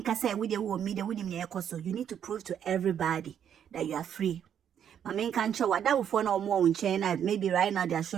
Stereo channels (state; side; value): quieter; left; 9.0 dB